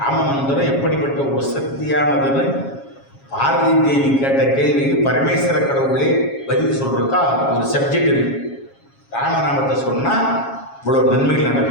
ராமமந்திரம் எப்படிப்பட்ட ஒரு சக்தியானதுன்னு பார்வதி தேவி கேட்ட கேள்விக்கு பரமேஸ்வர கடவுளே பதில் சொல்றதுக்கா ஒரு சப்ஜெக்ட் இருக்கு. ராமநாமத்தை சொன்னால் இவ்வளோ நன்மைகள்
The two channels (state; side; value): late; right; 7.3 ms